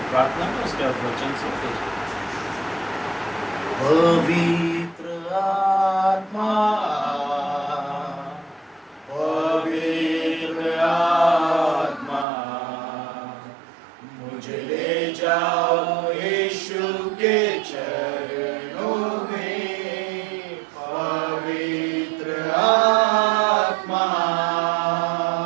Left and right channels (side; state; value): left; drops out; at 12.2 s